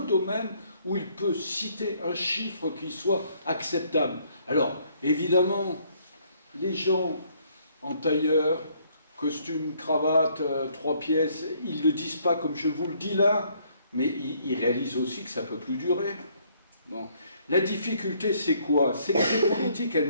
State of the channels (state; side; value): inverted; both; correlation -0.66